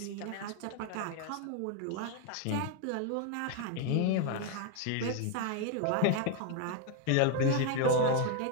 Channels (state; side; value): different; both; correlation 0.01